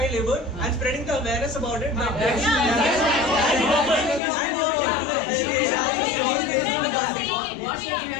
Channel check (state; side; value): drops out; right; at 4.2 s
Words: labor, and spreading the awareness about it.